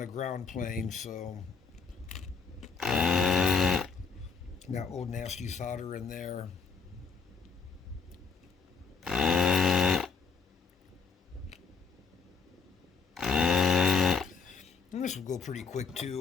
ground plane, so got old nasty solder in there. And this will go pretty quick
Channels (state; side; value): quieter; right; 5.4 dB